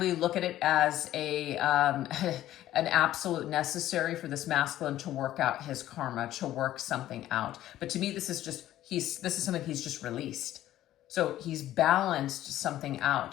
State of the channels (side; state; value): right; quieter; 13.5 dB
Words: look at it as an absolute necessary for this masculine to work out his karma, to work something out. But to me, this is something he's just released. So he's balanced something